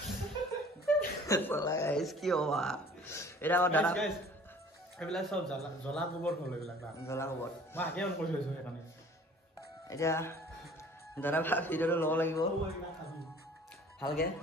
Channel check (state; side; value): normal; both; correlation 0.49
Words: চলা গাইছ কি হ'বা এটা দাদা এইবিলাক সব জ্বলা গোবৰ হ'ল এইবিলাক জ্বলা গোবৰ মই আগে অন কৰি থৈছো সেইকাৰণে এতিয়া দাদা ভিডিওটো ল'ব লাগিব ভালকে